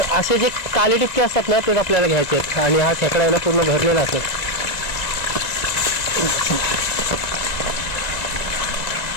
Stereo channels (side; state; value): right; late; 2.0 ms